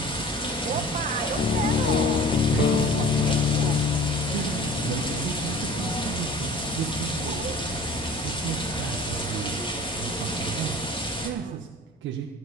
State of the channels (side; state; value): both; normal; correlation 0.43